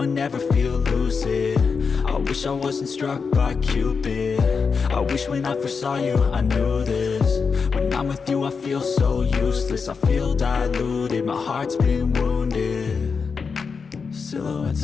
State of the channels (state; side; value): quieter; right; 5.4 dB